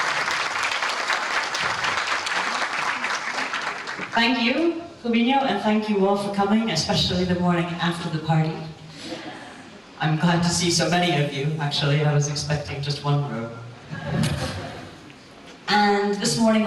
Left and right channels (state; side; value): identical; both; correlation 1.00